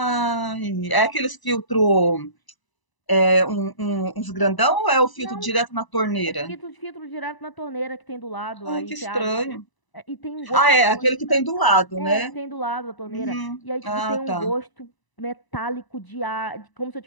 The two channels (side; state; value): right; late; 1.0 ms